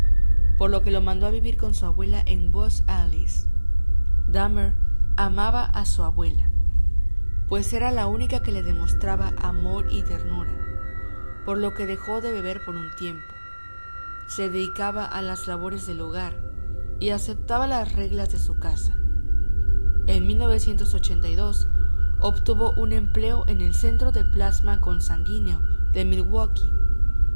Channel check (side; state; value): both; inverted; correlation -1.00